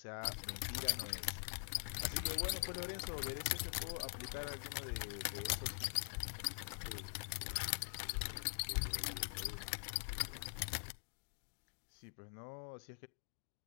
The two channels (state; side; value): silent; right; digital silence